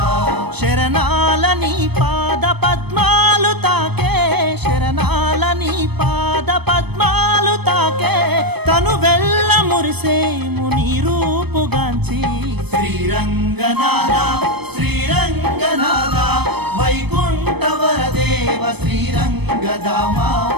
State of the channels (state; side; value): late; left; 0.98 ms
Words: శరణాల నీ పాద పద్మాలు తాకే శరణాల నీ పాద పద్మాలు తాకే తను వెళ్ళ మురిసేము నీ రూపుగాంచి శ్రీరంగనాథ శ్రీరంగనాథ వైకుంఠ వరదేవ శ్రీరంగదామా